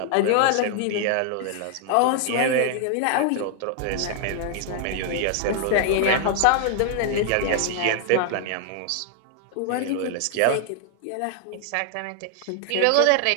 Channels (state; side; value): different; both; correlation 0.00